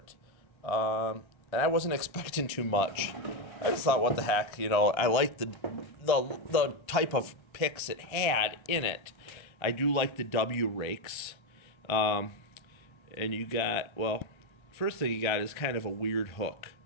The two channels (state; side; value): late; right; 1.3 ms